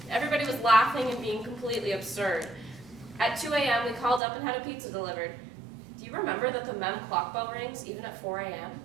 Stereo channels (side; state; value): left; drops out; at 4.2 s